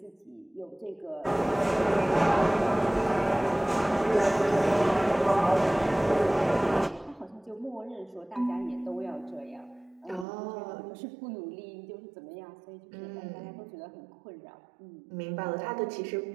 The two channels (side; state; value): left; drops out; at 10.2 s